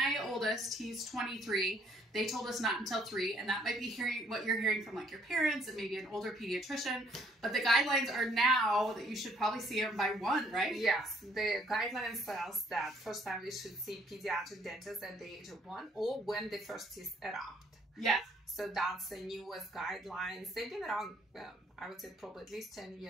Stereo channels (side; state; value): both; normal; correlation 0.64